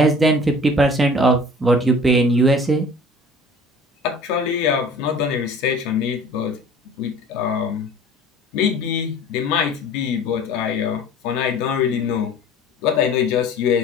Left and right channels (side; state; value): both; normal; correlation 0.46